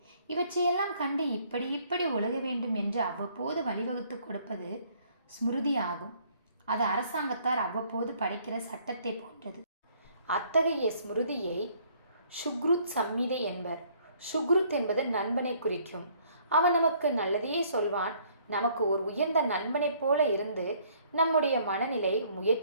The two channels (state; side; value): inverted; both; correlation -0.62